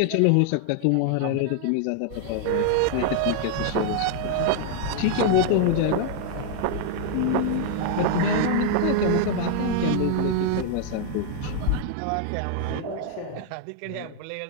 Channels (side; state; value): both; different; correlation 0.00